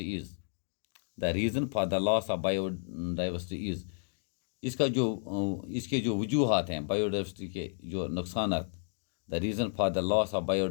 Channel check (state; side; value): silent; right; digital silence